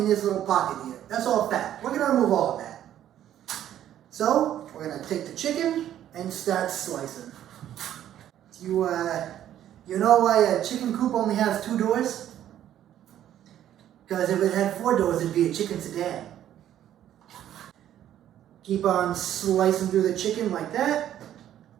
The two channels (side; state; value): left; quieter; 11.3 dB